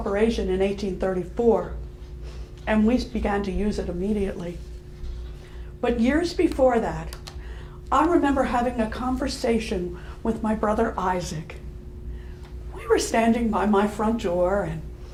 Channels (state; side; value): identical; both; correlation 1.00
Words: in 1834, and we began to use it immediately. But years before that, I remember having a conversation with my brother Isaac. We were standing by my front door, and